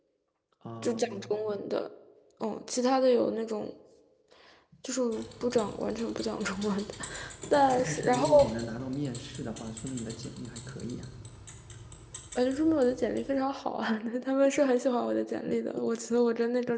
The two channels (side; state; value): both; identical; correlation 1.00